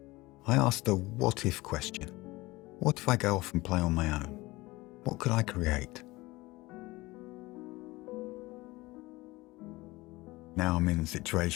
I asked a what-if question. What if I go off and play on my own? What could I create? Now I'm in a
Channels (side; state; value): right; quieter; 20.8 dB